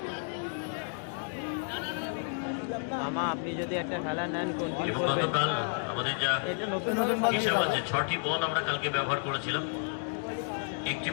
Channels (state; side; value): silent; right; 57 dB below the other